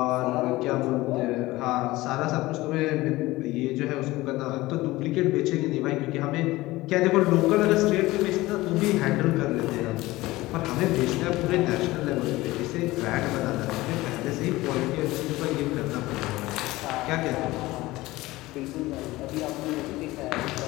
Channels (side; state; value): right; quieter; 18.9 dB